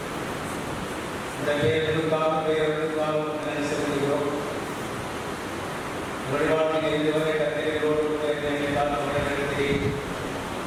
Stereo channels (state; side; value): identical; both; correlation 1.00